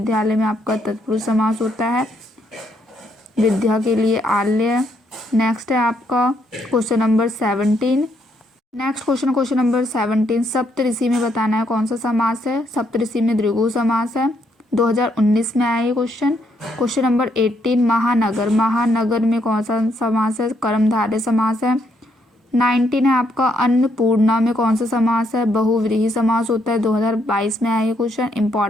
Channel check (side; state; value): both; normal; correlation 0.74